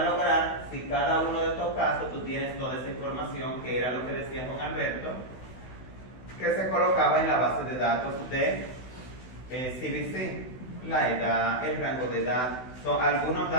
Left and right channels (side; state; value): right; late; 16 ms